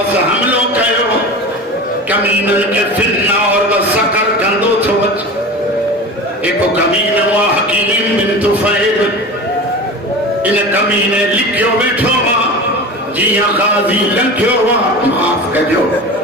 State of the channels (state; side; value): normal; both; correlation 0.31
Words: हमलो कयो कमीनन के फिरना और वसकर कंदो थो एको कमीन हुआ हकीम बिन तुफैल इन कमीने लिखियो बैठो वा जिया गाजी लंघियो वा माफ कजो